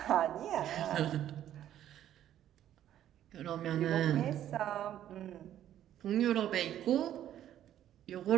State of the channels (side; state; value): left; quieter; 11.5 dB